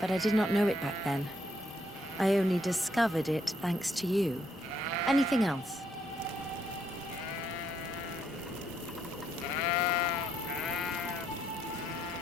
I did not know it back then. I only discovered it thanks to you. Anything else?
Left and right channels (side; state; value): both; normal; correlation 0.73